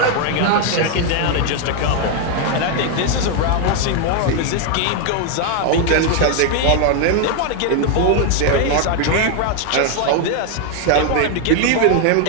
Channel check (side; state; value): both; different; correlation 0.01